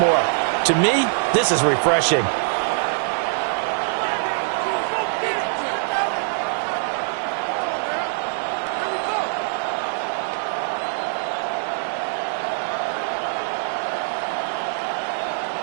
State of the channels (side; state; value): left; silent; digital silence